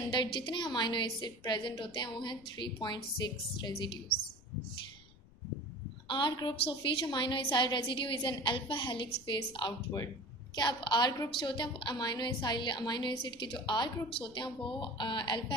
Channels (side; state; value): left; noise; rumble, 23 dB below the sound